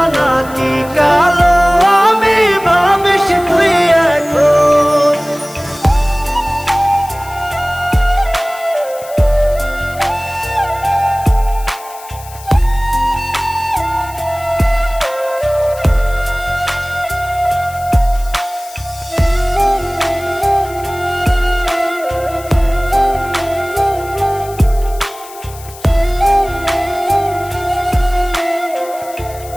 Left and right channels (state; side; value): noise; left; hiss, 18 dB below the sound